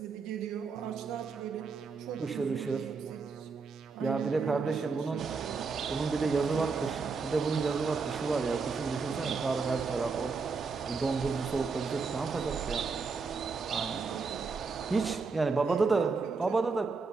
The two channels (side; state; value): left; quieter; 4.7 dB